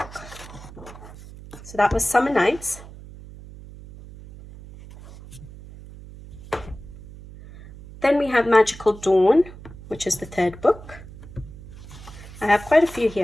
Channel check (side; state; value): right; noise; hum, 17 dB below the sound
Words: So that was Summer Nights. Then we have Magical Dawn, which is the third book. I have quite a few